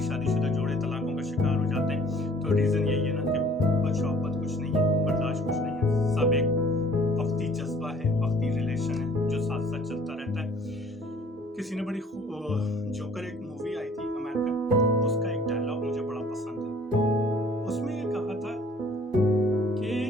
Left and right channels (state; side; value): normal; both; correlation 0.54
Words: शादीशुदा जोड़े तलाकों का शिकार हो जाते हैं। तो रीजन यही है ना कि मोहब्बत कुछ नहीं है, बर्दाश्त कुछ नहीं है, सब एक वक्ती जज्बा है, वक्ती रिलेशन है जो साथ साथ चलता रहता है। किसी ने बड़ी जोकर एक मूवी आई थी अमेरिकन, उसका एक डायलॉग मुझे बड़ा पसंद है। उसमें ये कहा था कि